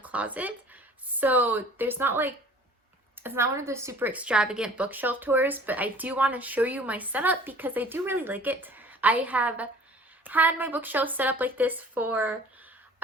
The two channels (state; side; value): normal; both; correlation 0.49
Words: So there's not like, it's not one of those super extravagant bookshelf tours, but I do want to show you my setup because I do really like it. I have had my bookshelf set up like this for